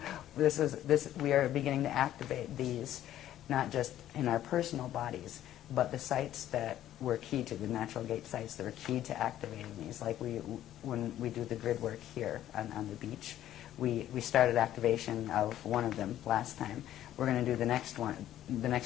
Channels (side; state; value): right; quieter; 12.4 dB